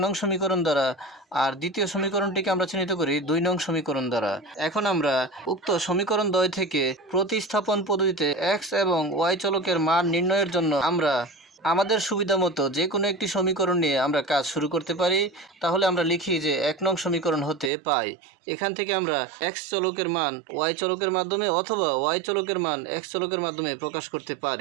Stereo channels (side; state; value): left; drops out; at 17.7 s